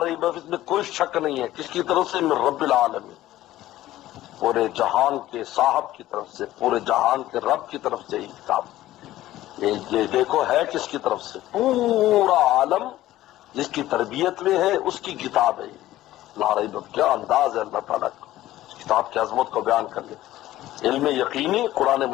ریب فیہ، اس میں کوئی شک نہیں ہے. کس کی طرف سے؟ من رب العالمین، پورے جہان کے صاحب کی طرف سے، پورے جہان کے رب کی طرف سے یہ کتاب. یہ دیکھو ہے کس کی طرف سے؟ پورا عالم جس کی تربیت میں ہے اس کی کتاب ہے. لا ریب، کیا انداز ہے اللہ تعالیٰ کا اس کتاب کی عظمت کو بیان کر لے. علم یقینی، قرآن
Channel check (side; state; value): right; quieter; 14.9 dB